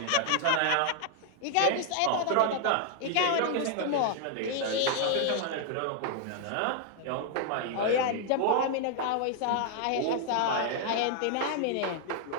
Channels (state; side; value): different; both; correlation 0.00